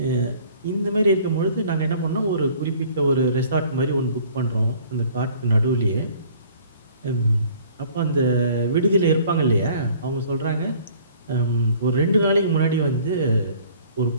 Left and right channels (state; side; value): inverted; both; correlation -0.54